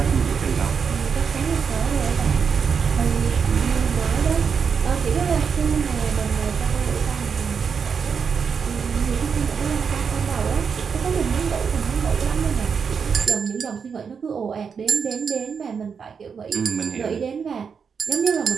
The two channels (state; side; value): quieter; left; 6.2 dB